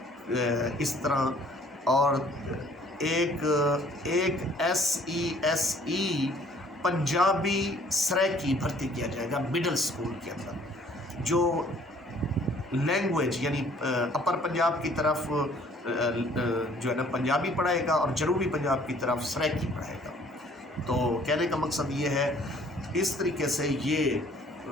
اس طرح. اور ایک SE پنجابی سرائکی بھرتی کیا جائے گا مڈل اسکول کے اندر، جو لینگویج یعنی اپر پنجاب کی طرف جو ہے نا پنجابی پڑھائے گا اور جنوبی پنجاب کی طرف سرائکی پڑھائے گا. تو کہنے کا مقصد یہ ہے، اس طریقے سے یہ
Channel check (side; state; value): both; normal; correlation 0.57